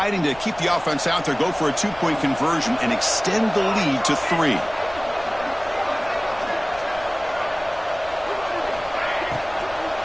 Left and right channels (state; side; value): noise; left; rumble, 20 dB below the sound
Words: to keep the offense out there, go for a 2-point conversion, and extend the lead to 3.